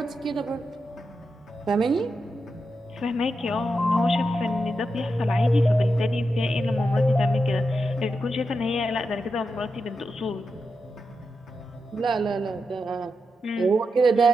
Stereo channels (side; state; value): both; normal; correlation 0.87